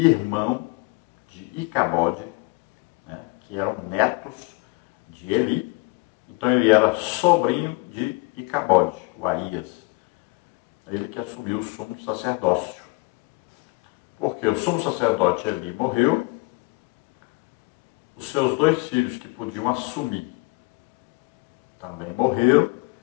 de Icabode, né, que eram netos de Eli. Então ele era sobrinho de Icabode, o Aías. Ele que assumiu o sumo sacerdócio. Porque o sumo sacerdote Eli morreu, os seus dois filhos que podiam assumir também morreram.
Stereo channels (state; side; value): quieter; right; 27.1 dB